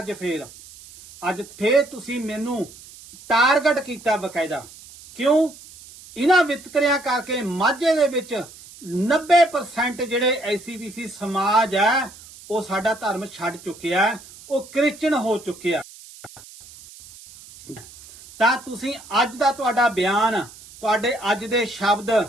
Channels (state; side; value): noise; right; hiss, 19 dB below the sound